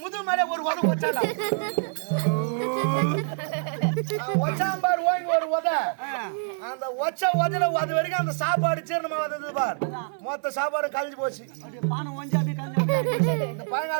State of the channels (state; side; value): silent; left; digital silence